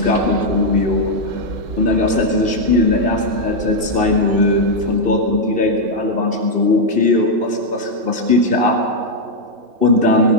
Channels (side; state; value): left; late; 2.7 ms